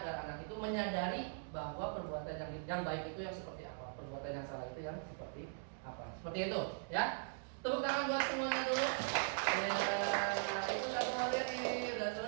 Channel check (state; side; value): silent; left; digital silence